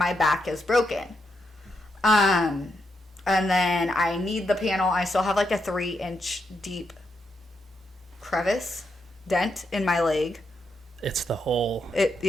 back is broken. And then I need the panel. I still have like a 3-inch deep crevice dent in my leg. It's the hole.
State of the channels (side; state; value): both; normal; correlation 0.82